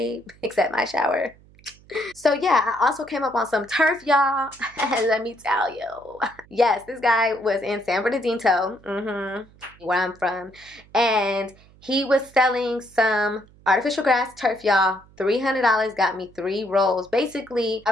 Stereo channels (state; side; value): noise; right; hum, 26 dB below the sound